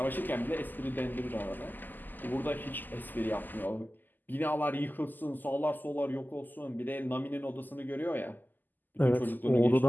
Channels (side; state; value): right; late; 0.087 ms